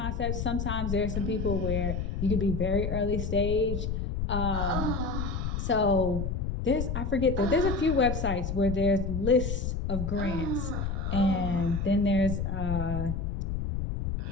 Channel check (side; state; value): left; noise; rumble, 2 dB below the sound